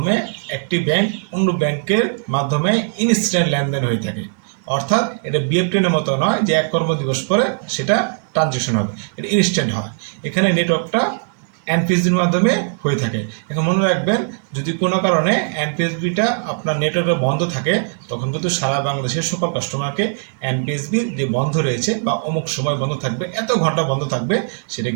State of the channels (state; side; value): silent; left; digital silence